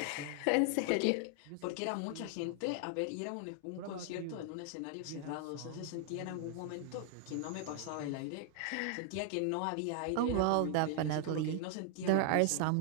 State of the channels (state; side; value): different; both; correlation 0.00